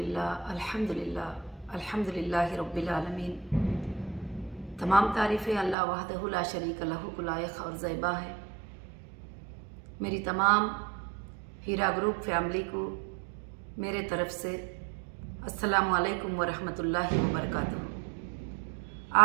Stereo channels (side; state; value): left; drops out; at 5.8 s